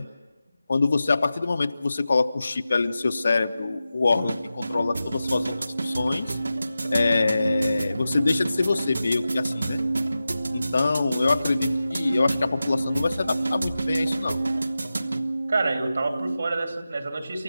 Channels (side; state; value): both; inverted; correlation -0.93